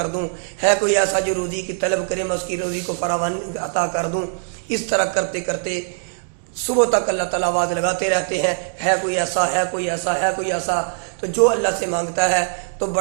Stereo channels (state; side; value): silent; left; digital silence